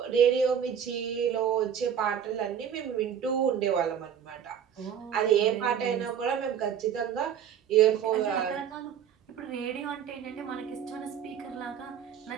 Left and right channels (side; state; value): left; quieter; 8.5 dB